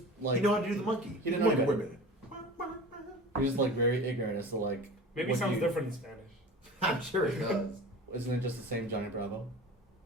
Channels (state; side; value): normal; both; correlation 0.37